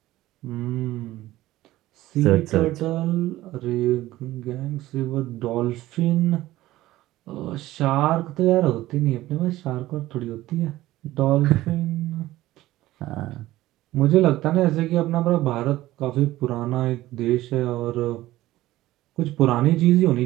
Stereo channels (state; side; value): quieter; left; 16.1 dB